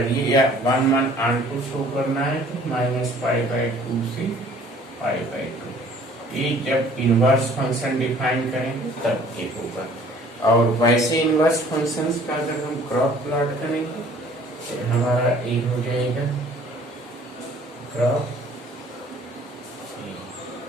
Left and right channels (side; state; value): both; normal; correlation 0.54